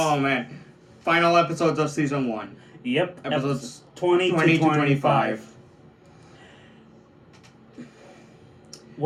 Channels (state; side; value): identical; both; correlation 1.00